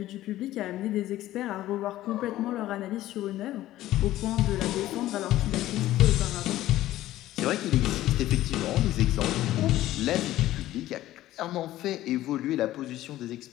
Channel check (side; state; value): right; quieter; 14.8 dB